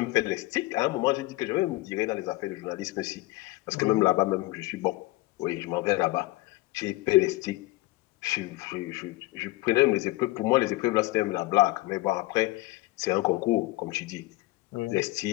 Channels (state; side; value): quieter; right; 20.5 dB